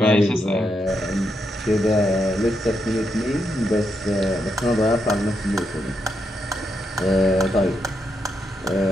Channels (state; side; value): normal; both; correlation 0.82